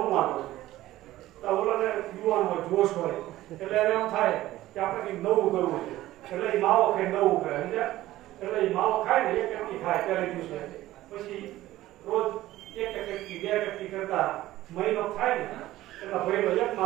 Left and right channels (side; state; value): left; quieter; 15.6 dB